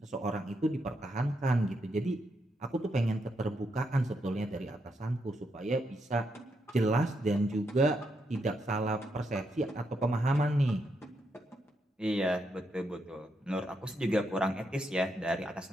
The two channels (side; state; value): both; normal; correlation 0.80